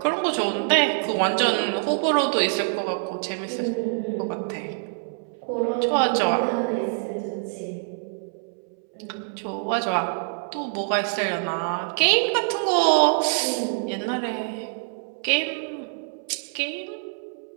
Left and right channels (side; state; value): left; silent; 62 dB below the other